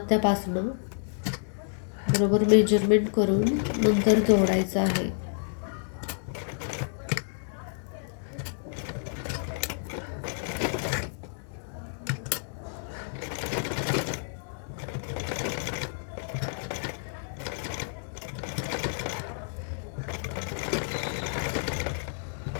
बरोबर मेजरमेंट करून नंतर जोडायचं आहे.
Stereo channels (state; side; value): silent; right; digital silence